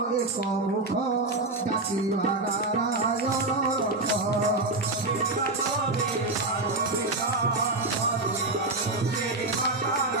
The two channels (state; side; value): quieter; left; 3.0 dB